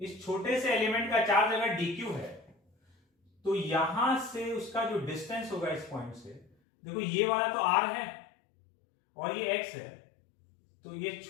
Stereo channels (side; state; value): right; drops out; at 6.5 s